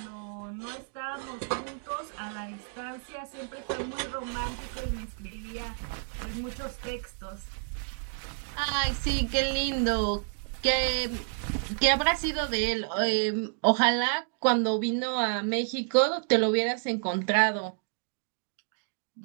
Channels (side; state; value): left; silent; digital silence